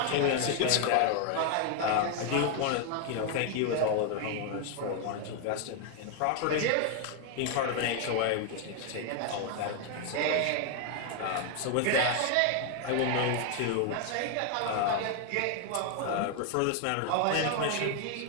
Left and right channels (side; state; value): both; different; correlation 0.00